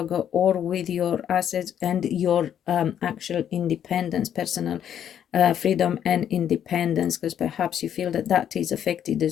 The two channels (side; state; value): right; quieter; 9.6 dB